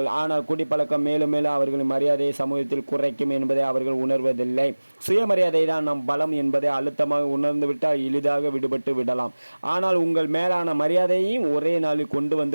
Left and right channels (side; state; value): both; inverted; correlation -1.00